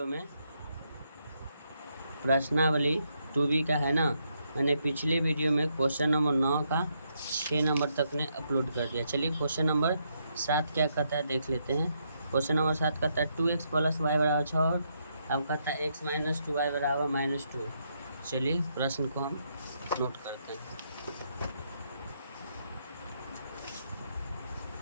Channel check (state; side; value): inverted; both; correlation -0.77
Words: में प्रश्नावली 2B का है ना, मैंने पिछले वीडियो में क्वेश्चन नंबर 9 का 6 नंबर तक ने अपलोड कर दिया। चलिए क्वेश्चन नंबर 7 क्या कहता है देख लेते हैं। क्वेश्चन नंबर 7 कहता है 2x + y = 6 और अब कहता है x - 2y = -2। चलिए प्रश्न को हम नोट करते हैं।